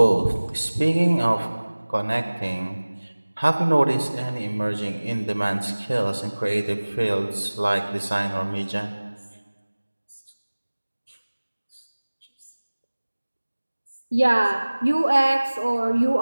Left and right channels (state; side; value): inverted; both; correlation -1.00